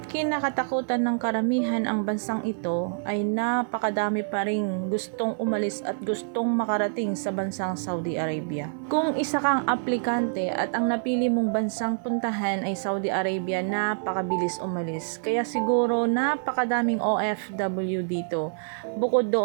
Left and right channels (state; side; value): silent; left; 58 dB below the other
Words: kinakatakutan ng karamihan ang bansang ito, ay napakadami pa ring gustong umalis at gustong makarating sa bansang Saudi Arabia. Kung isa kang aplikante at ang napili mong bansang puntahan ay Saudi Arabia, napakabilis umalis. Kaya siguro napakadaming OFW dito. Bukod